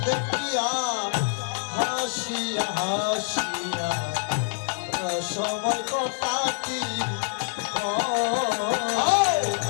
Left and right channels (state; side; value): silent; right; digital silence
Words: দেখিয়া হাসিয়া হাসিয়া সময় কটাটি